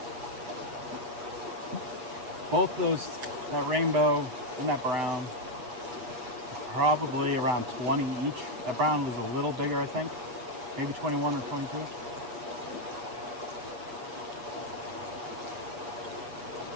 Both those, that rainbow and that brown, probably around 20 each. That brown was a little bigger, I think. Maybe 21 or 22.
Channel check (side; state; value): left; late; 7.9 ms